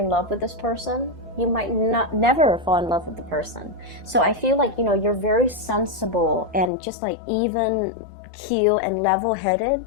love with this person, you might never fall in love with the person. So I feel like, you know, you're very sensible and just like even keel and level-headed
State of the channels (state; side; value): drops out; right; at 6.7 s